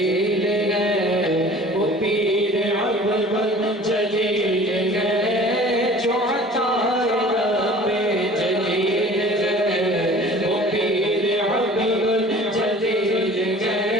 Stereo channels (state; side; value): normal; both; correlation 0.46